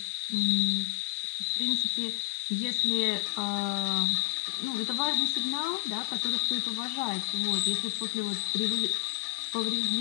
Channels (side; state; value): right; silent; digital silence